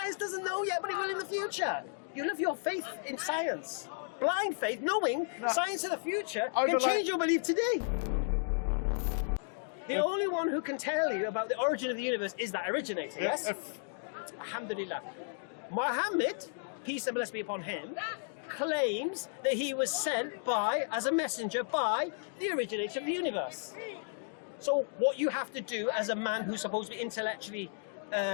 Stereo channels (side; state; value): right; silent; digital silence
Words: doesn't know yet, but it will in the future. You live your faith in science. Blind faith, knowing science in the future can change your belief today. The only one who can tell you about the origin of the universe is that originator, yes? Alhamdulillah. Muhammad, peace and blessing be upon him, claims that he was sent by, as a messenger, by the originator of the universe. So what you have to do as a man who's supposed to be intellectually